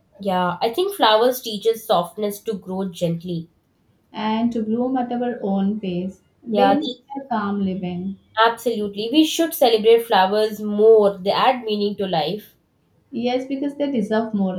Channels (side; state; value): both; identical; correlation 1.00